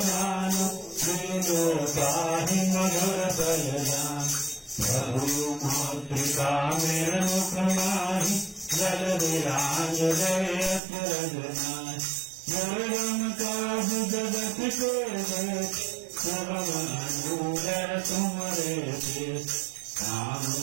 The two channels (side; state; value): left; drops out; at 10.8 s